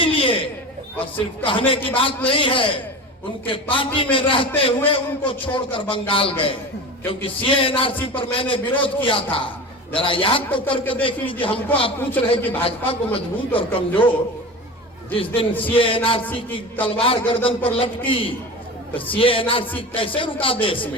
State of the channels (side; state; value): both; normal; correlation 0.30